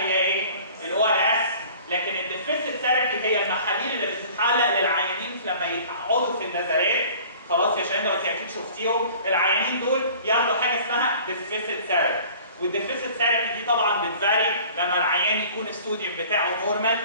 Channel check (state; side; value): inverted; both; correlation -0.47